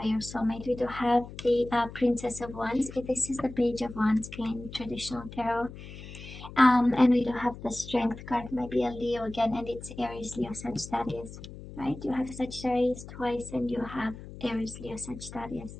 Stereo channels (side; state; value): left; noise; hum, 14 dB below the sound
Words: your soulmate. We do have the Princess of Wands. This is the Page of Wands in traditional tarot. And we do have the Strength card, maybe a Leo again, and it's Aries, Leo, Sagittarius, right? You have Sagittarius twice, and you have Aries, Leo, Sagittarius